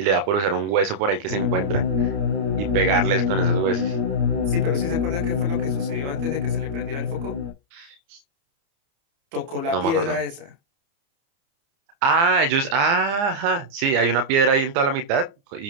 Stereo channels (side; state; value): left; late; 29 ms